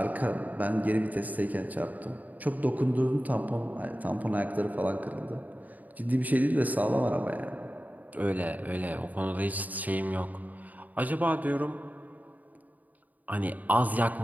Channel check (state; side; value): late; left; 0.078 ms